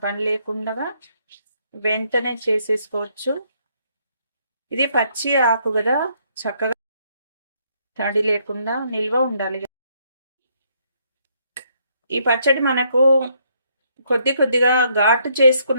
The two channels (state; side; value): inverted; both; correlation -0.71